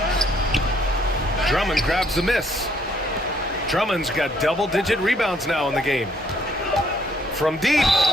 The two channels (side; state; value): both; normal; correlation 0.66